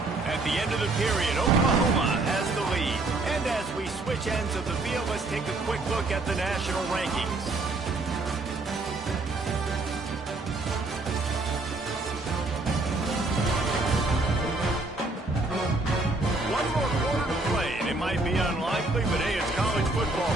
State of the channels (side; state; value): left; quieter; 3.1 dB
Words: At the end of the period, Oklahoma has the lead. And as we switch ends of the field, let's take a quick look at the national rankings. One more quarter to play, and it might be unlikely, but hey, it's college football.